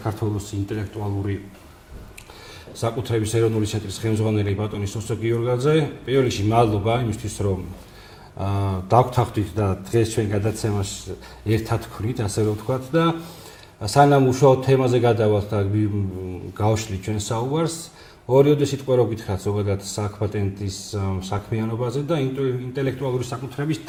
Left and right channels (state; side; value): identical; both; correlation 1.00